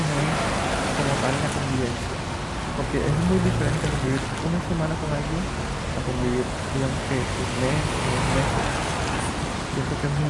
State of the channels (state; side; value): identical; both; correlation 1.00